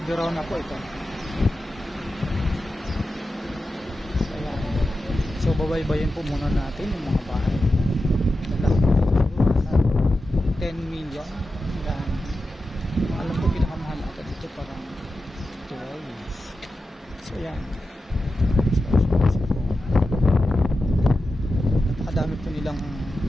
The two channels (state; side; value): normal; both; correlation 0.91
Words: Verona po ito. So ayan, so babaybayin po muna natin yung mga bahay. Nasa 10 million. Ayan, alam ko pinakamahal ata dito parang 12. So yan, napakadami po nilang